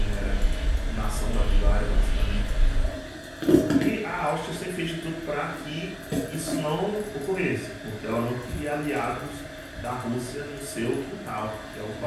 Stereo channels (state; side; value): identical; both; correlation 1.00